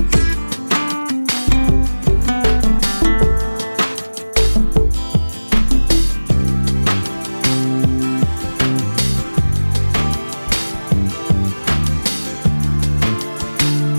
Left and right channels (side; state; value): both; inverted; correlation -1.00